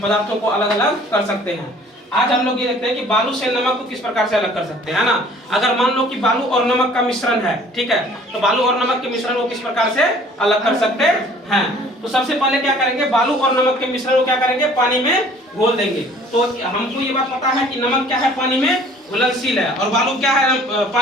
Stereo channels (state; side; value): normal; both; correlation 0.53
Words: को अलग अलग कर सकते हैं। आज हम लोग ये देखते हैं कि बालू से नमक को किस प्रकार से अलग कर सकते हैं, है ना। अगर मान लो कि बालू और नमक का मिश्रण है, ठीक है, तो बालू और नमक के मिश्रण को किस प्रकार से अलग कर सकते हैं। तो सबसे पहले क्या करेंगे, बालू और नमक के मिश्रण को क्या करेंगे, पानी में घोल देंगे। तो हमको ये बात पता है कि नमक क्या है, पानी में घुलनशील है, और बालू क्या है,